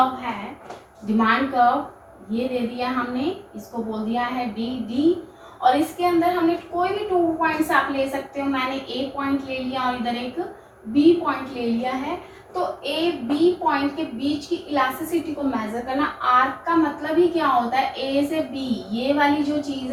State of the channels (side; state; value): both; identical; correlation 1.00